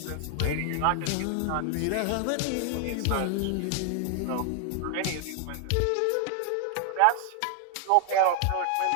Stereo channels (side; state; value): both; different; correlation 0.00